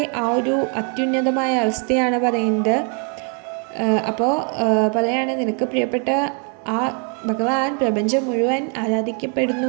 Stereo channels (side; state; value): left; quieter; 37.8 dB